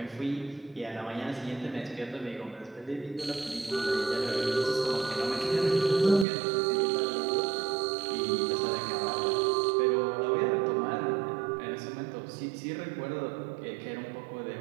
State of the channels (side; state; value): left; drops out; at 6.2 s